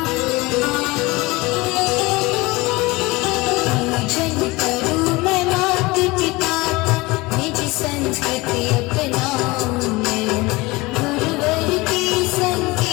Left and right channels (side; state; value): right; quieter; 22.5 dB